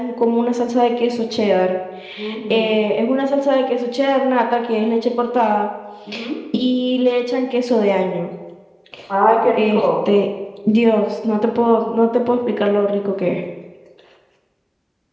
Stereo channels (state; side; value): identical; both; correlation 1.00